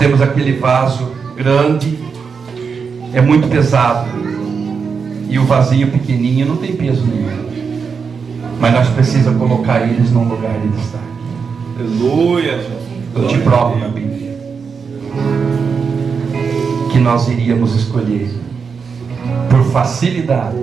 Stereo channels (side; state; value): left; quieter; 5.7 dB